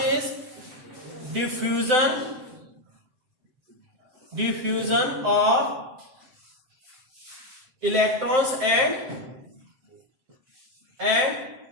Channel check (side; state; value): left; late; 7.7 ms